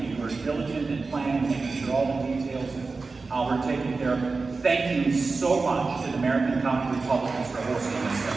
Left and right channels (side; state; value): left; quieter; 4.0 dB